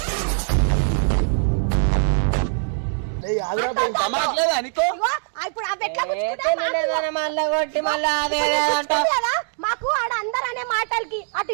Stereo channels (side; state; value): left; silent; 64 dB below the other